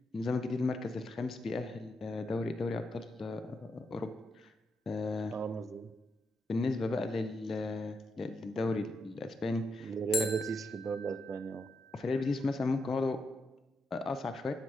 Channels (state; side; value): normal; both; correlation 0.83